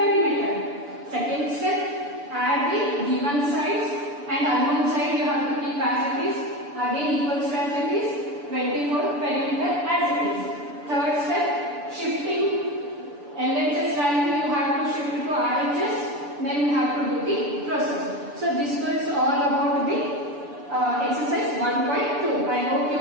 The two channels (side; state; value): left; late; 6.9 ms